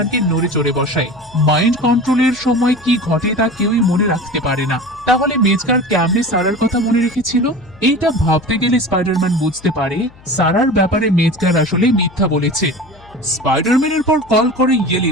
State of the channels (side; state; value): left; noise; hum, 25 dB below the sound